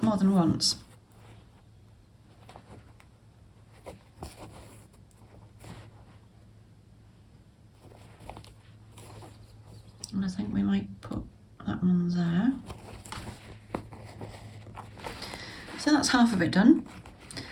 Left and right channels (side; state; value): both; identical; correlation 1.00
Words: than once. And I think we might put that one there. So that's half of it done.